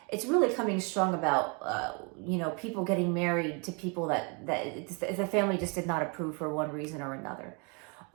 It's really coming strong about, people getting married to people that the family just did not approve for one reason or another.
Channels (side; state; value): left; quieter; 33.8 dB